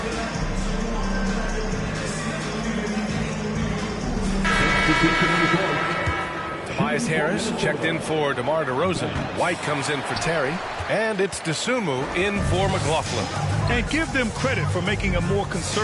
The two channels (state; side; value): identical; both; correlation 1.00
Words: 15. Tobias Harris checked in for DeMar DeRozan. White comes in for Terry. And it's Dosunmu in for McLaughlin. And give them credit for making a more